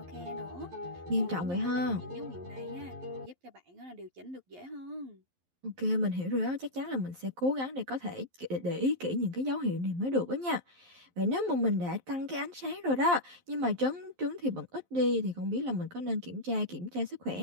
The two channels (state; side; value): late; left; 11 ms